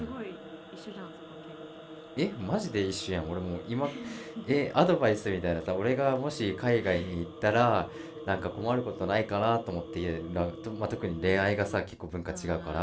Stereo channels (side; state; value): both; identical; correlation 1.00